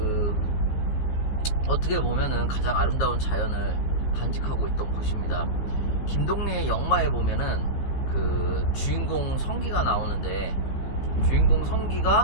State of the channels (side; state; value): right; late; 14 ms